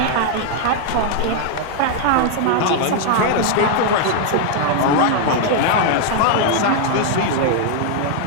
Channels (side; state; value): both; different; correlation 0.00